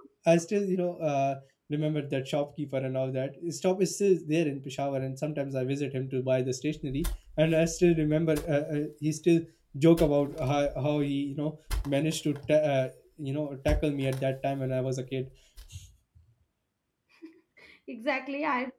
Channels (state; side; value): identical; both; correlation 1.00